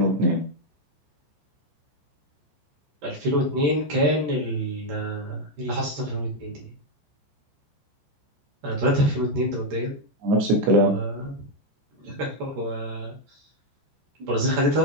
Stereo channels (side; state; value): left; late; 14 ms